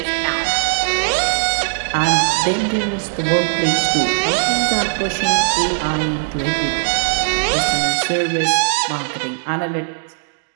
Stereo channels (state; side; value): silent; left; digital silence